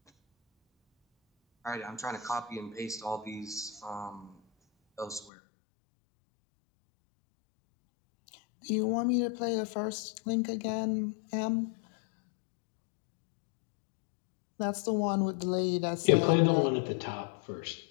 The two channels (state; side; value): drops out; right; at 5.3 s